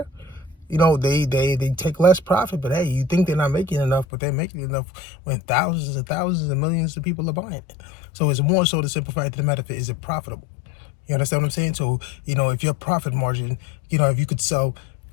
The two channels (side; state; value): right; drops out; at 4.0 s